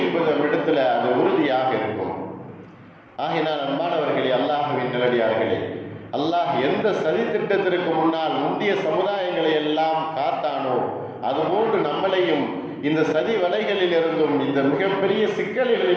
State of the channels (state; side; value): identical; both; correlation 1.00